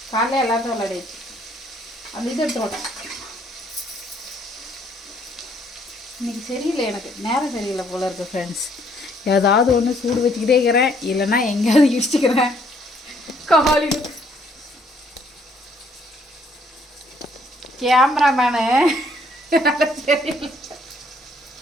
காலையில் எல்லாத்தையும் விளையாடிச்சு. அந்த இது எடுத்து இன்னைக்கு சரியில்லை, எனக்கு நேரம் சரியில்லை போல இருக்கு ஃப்ரெண்ட்ஸ். ஏதாவது ஒன்று சூடு வச்சுக்கிட்டே இருக்கிறேன், இல்லைன்னா எங்கேயாவது இடிச்சுக்கிறேன். காலையில் கேமராமேனு சரியில்லை.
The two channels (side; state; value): both; normal; correlation 0.65